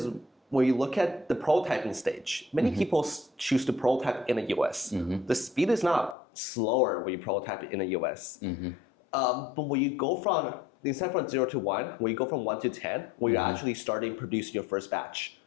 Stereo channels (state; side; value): drops out; right; at 6.2 s